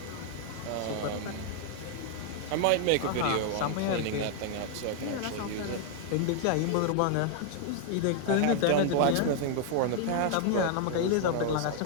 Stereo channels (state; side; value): different; both; correlation 0.00